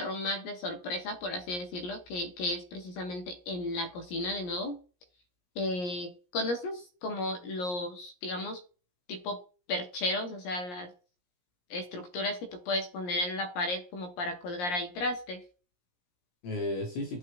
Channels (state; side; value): late; right; 17 ms